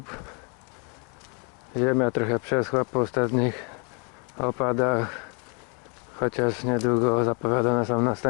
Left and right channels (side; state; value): right; quieter; 35.8 dB